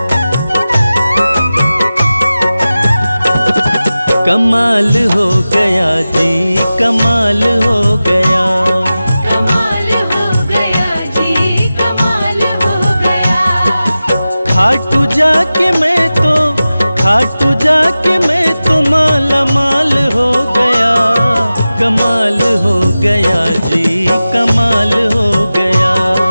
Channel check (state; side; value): inverted; both; correlation -0.95